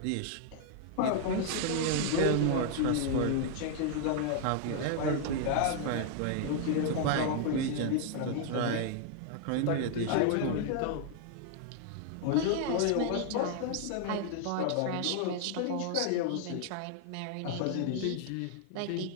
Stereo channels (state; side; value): different; both; correlation 0.00